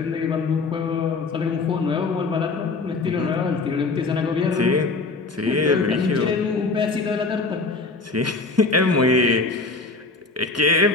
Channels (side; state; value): right; quieter; 3.8 dB